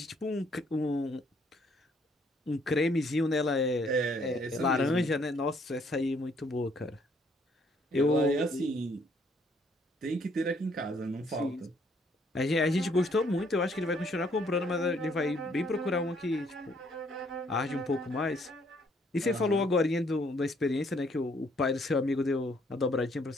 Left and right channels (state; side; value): normal; both; correlation 0.66